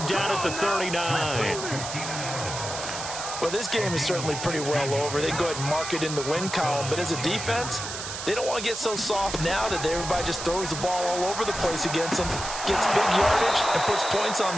down at the 39. Well, this game is certainly pretty well over. They go ahead and mark it in the win column. But as a defense, they don't want to get so soft now that everybody just throws the ball all over the place against them, gets big yardage, and puts points on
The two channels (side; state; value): right; noise; hiss, 7 dB below the sound